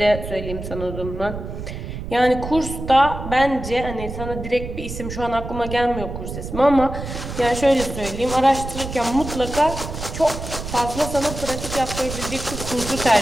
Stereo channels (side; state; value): right; noise; rumble, 8 dB below the sound